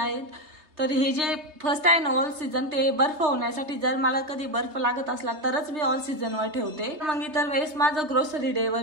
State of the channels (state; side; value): late; left; 3.3 ms